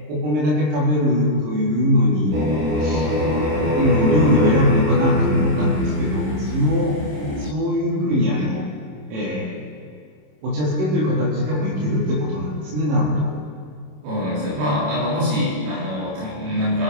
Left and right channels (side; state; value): left; late; 27 ms